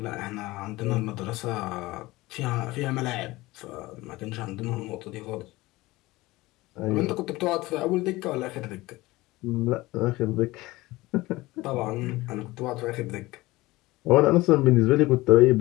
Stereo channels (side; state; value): right; quieter; 19.8 dB